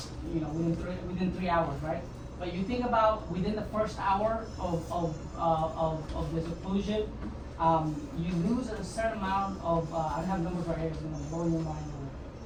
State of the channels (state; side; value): identical; both; correlation 1.00